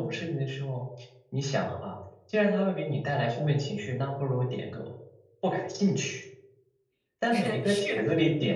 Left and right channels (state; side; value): identical; both; correlation 1.00